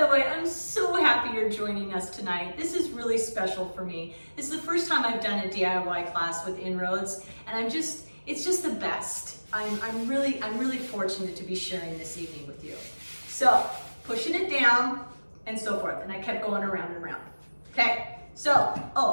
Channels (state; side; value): inverted; both; correlation -1.00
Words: way, I'm so happy you're joining us tonight. This is really special for me. This is the first time I've done a DIY class with InRoads, and it's just the best. I'm really fortunate to be sharing this evening with you. So, pushing it down and so forth, and I kept going around and around. Okay, so